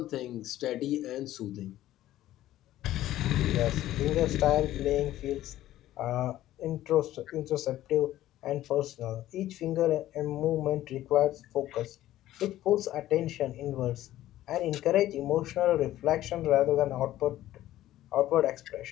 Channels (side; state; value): right; quieter; 14.1 dB